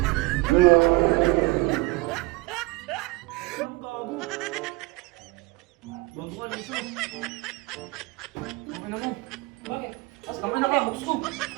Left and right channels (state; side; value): quieter; left; 23.6 dB